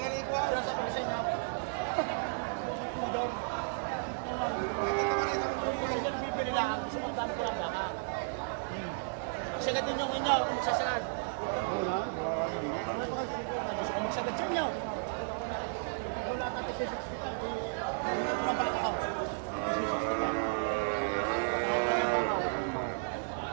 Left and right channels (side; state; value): left; silent; digital silence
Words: sinasabi ko sa inyo. Daw. Ako yung sige bibili lang, gusto kong dami ko lang baka. Sagad din yung inyo, kung magsasagad. Wala, Gusto kong magsagad sa inyo. Wala tatay si 65, hindi ko na baka ako. Si 65.